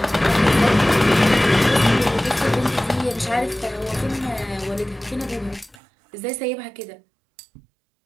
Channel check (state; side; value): drops out; left; at 5.8 s